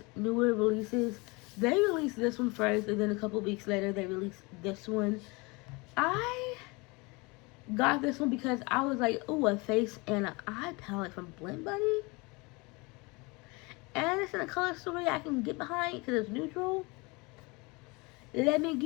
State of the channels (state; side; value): quieter; right; 26.6 dB